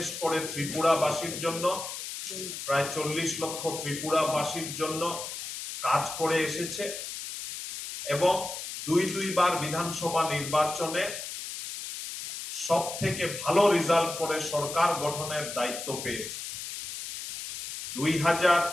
করে ত্রিপুরাবাসীর জন্য, প্রায় 40 লক্ষ ত্রিপুরাবাসীর জন্য কাজ করে এসেছে এবং দুইবার বিধানসভা নির্বাচনে সব থেকে ভালো রেজাল্ট করে সরকার গঠনের দায়িত্ব পেয়েছে।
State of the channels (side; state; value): left; noise; hiss, 8 dB below the sound